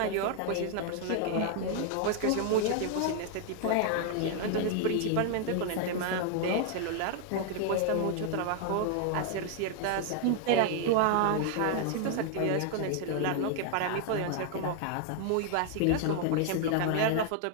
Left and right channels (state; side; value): different; both; correlation 0.00